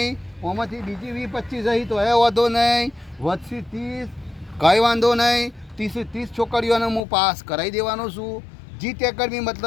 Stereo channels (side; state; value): right; drops out; at 7.0 s